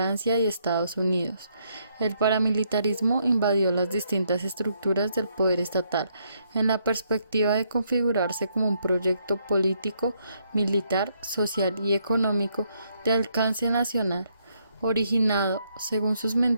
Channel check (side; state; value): both; inverted; correlation -0.73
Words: y Estados Unidos. El paramilitarismo invadió las distintas estructuras del poder estatal en la perspectiva de configurarse como un proyecto político, militar, social y económico de alcance nacional, originado, según sus